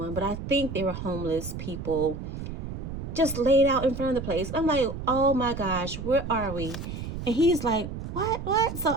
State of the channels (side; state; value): right; noise; rumble, 7 dB below the sound